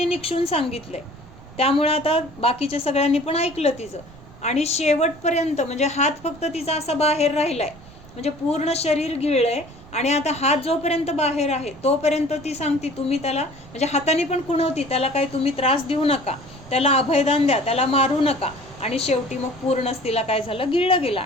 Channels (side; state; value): right; noise; rumble, 21 dB below the sound